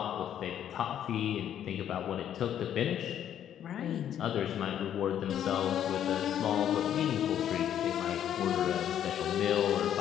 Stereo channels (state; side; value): quieter; right; 10.1 dB